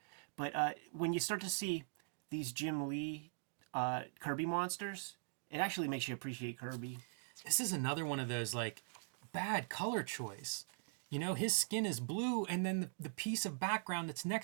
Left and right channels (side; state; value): left; silent; digital silence